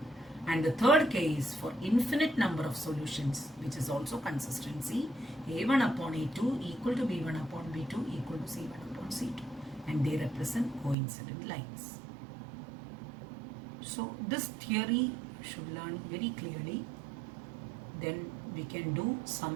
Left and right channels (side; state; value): left; drops out; at 11.0 s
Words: And the third case, for infinite number of solutions, which is also consistency, A1 upon A2 equal to B1 upon B2 equal to C1 upon C2. And they represent coincident lines. So this theory should learn very clearly. Then we can do